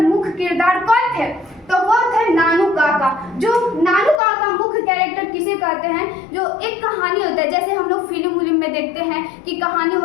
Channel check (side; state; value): right; drops out; at 4.2 s